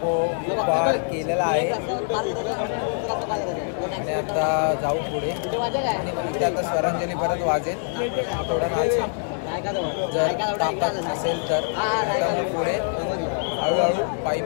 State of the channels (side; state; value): right; silent; digital silence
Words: केलेला आहे आणि आता जाऊ पुढे आणि इथे आता स्वरांजली परत वाजेल थोडं नाचेल जर ताकद असेल तर आता मग पुढे हळूहळू